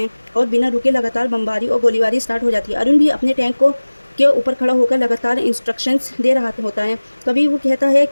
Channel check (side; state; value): both; inverted; correlation -1.00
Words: और बिना रुके लगातार बमबारी और गोलीबारी स्टार्ट हो जाती है। अरुण भी अपने टैंक के ऊपर खड़ा होकर लगातार इंस्ट्रक्शंस दे रहा होता है। कभी वो कहता है